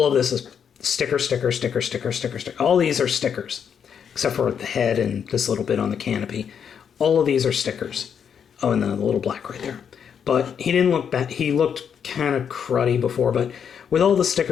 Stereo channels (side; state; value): right; quieter; 7.6 dB